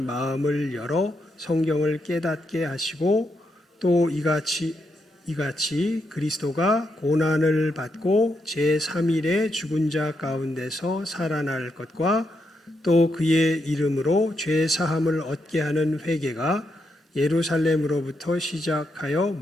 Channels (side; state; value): both; normal; correlation 0.81